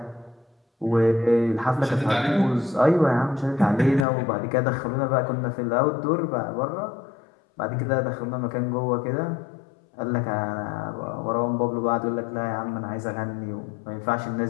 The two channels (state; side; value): drops out; right; at 4.0 s